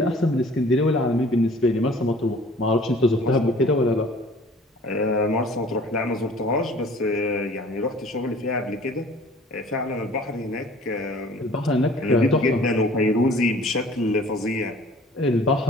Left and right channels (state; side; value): normal; both; correlation 0.50